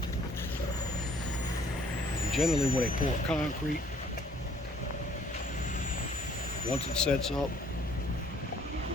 And generally when they pour concrete, once it sets up,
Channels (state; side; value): normal; both; correlation 0.60